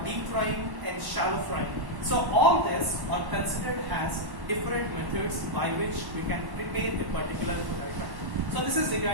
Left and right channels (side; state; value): left; late; 1.1 ms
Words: deep frying and shallow frying. So all this are considered as different methods by which we can prepare a particular food item. So this is